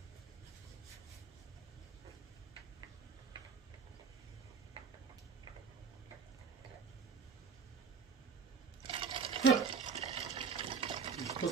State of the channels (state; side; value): quieter; left; 5.7 dB